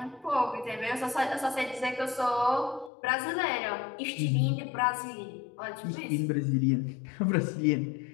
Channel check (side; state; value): right; drops out; at 2.9 s